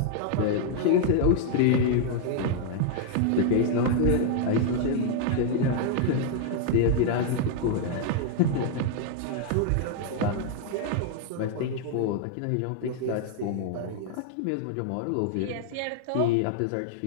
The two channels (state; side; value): different; both; correlation 0.00